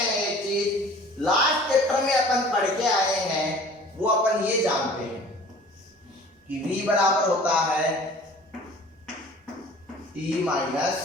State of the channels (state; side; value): normal; both; correlation 0.47